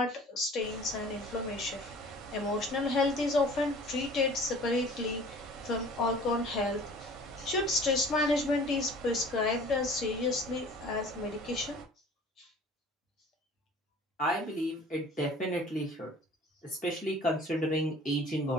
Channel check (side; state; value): both; normal; correlation 0.47